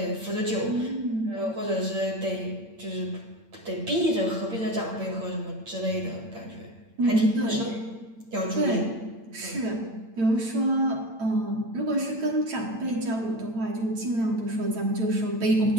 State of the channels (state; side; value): late; left; 8.8 ms